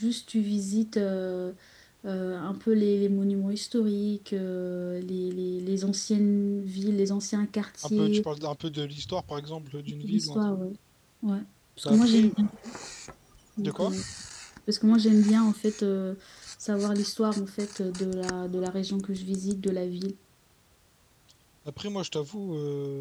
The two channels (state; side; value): identical; both; correlation 1.00